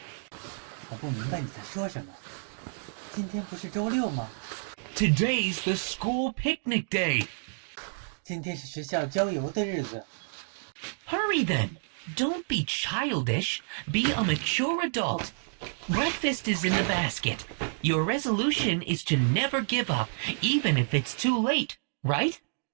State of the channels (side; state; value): left; silent; digital silence